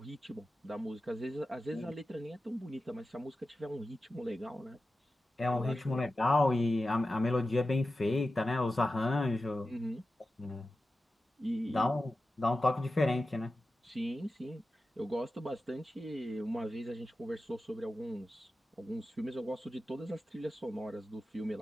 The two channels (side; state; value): both; normal; correlation 0.93